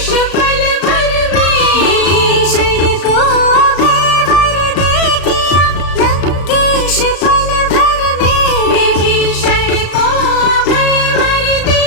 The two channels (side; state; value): right; late; 35 ms